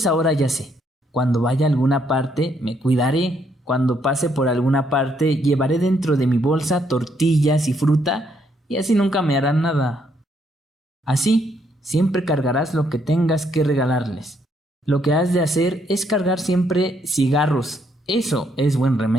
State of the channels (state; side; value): normal; both; correlation 0.72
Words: ahora ya sé, cuando vaya a alguna parte me cuidaré, cuando pase por alguna parte llevaré dentro de mi bolsa tortillas y fruta y así nunca me harán nada. Así, siempre cargarás lo que tengas que regalarles. Lo que has de hacer es cargar siempre cigarros, eso es buen